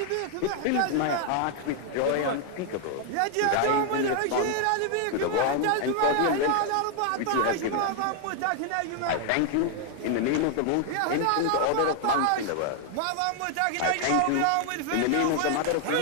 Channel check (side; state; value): both; different; correlation 0.00